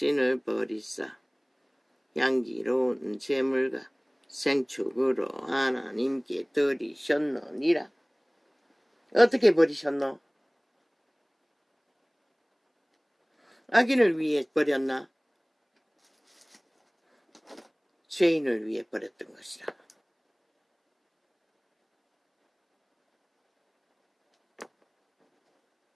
버리사 향기로운 제물과 생축으로 하나님께 드리셨느니라. 어떻게 버리셨노? 악인을 위해 버렸나? 죄인을 위해 버렸던 것이라.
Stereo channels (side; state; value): both; identical; correlation 1.00